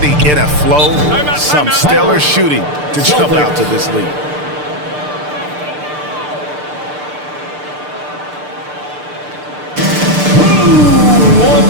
in a flow. Some stellar shooting to jump out to this lead. Who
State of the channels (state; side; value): late; left; 6.7 ms